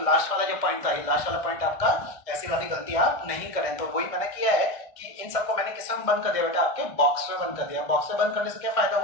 लास्ट वाला जो पॉइंट था, ये लास्ट वाला पॉइंट आपका, ऐसी वाली गलती आप नहीं करें। तो वही मैंने किया है कि इन सबको मैंने किस में बंद कर दिया बेटा, आपके बॉक्स में बंद कर दिया। बॉक्स में बंद करने से क्या फायदा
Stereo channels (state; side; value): late; right; 1.6 ms